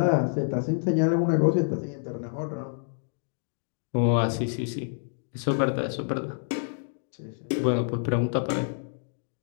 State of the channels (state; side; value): silent; right; digital silence